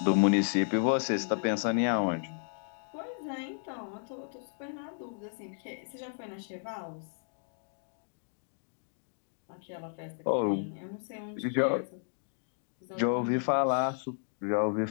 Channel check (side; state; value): right; silent; digital silence